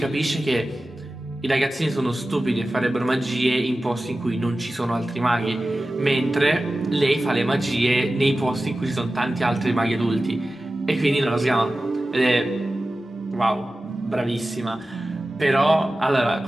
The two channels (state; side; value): normal; both; correlation 0.95